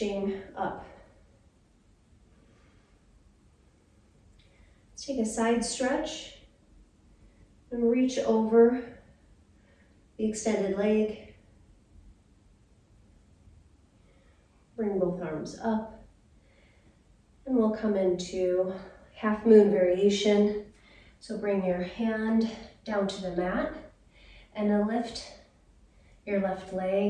up. Let's take a side stretch and reach over the extended leg. Bring both arms up. And we'll come into half moon variation. So bring your hand down to the mat and then lift your left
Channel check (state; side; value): identical; both; correlation 1.00